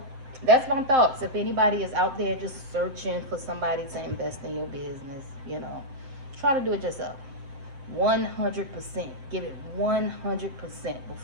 that's my thoughts. If anybody is out there just searching for somebody to invest in your business, you know, try to do it yourself. 100%. Give it 100%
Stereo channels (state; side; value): late; left; 7.6 ms